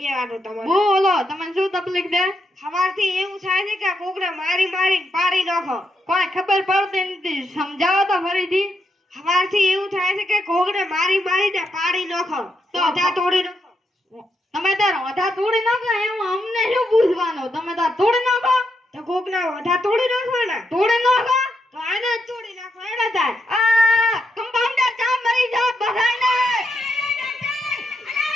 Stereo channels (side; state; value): both; normal; correlation 0.82